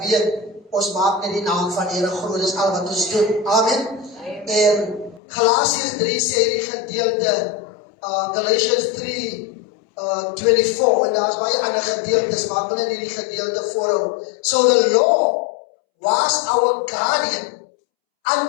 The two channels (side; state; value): right; drops out; at 5.2 s